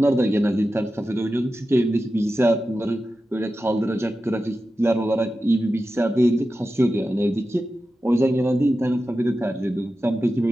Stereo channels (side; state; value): both; normal; correlation 0.92